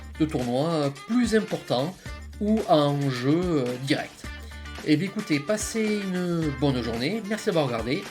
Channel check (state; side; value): identical; both; correlation 1.00